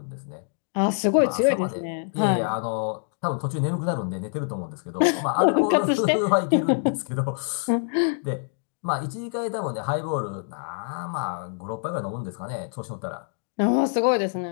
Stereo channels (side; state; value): right; silent; 61 dB below the other